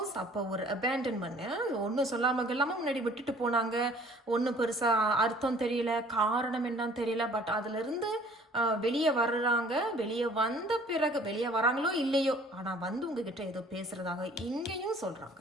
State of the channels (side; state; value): both; normal; correlation 0.54